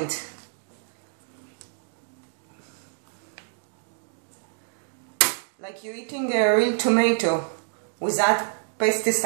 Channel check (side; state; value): left; silent; 60 dB below the other